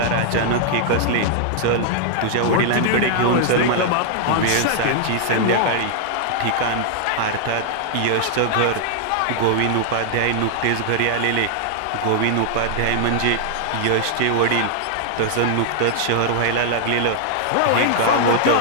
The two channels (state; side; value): different; both; correlation -0.01